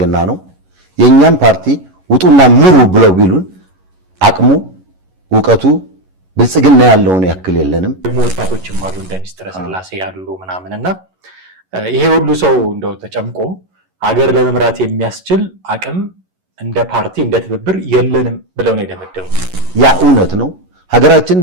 ነው። የኛም ፓርቲ ውጡና ምሩ ብለው ቢሉን አቅሙ ዕውቀቱ ብልጽግና ያለውን ያክል የለንም። ደግሞ ወጣቶችም አሉ እንደ ሚኒስትር ስላሴ ያሉ ምናምንና ይሄ ሁሉ ሰው እንደው ተጨምቆ ሀገር ለመምራት የሚያስችል አቅም እንደ ፓርቲ እንደ ትብብር የለንም ብለው ነው የደመደሙት። ያ እውነት ነው።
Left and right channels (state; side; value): late; left; 11 ms